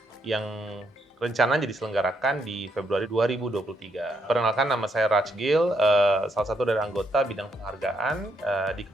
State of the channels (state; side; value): normal; both; correlation 0.76